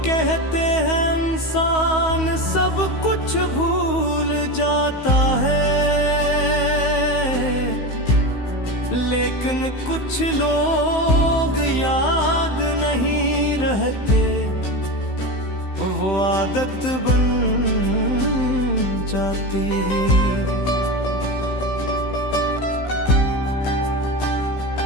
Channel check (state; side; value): late; right; 15 ms